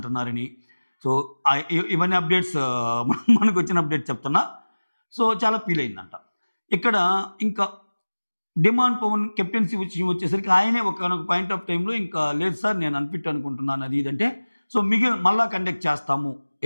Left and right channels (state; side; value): inverted; both; correlation -1.00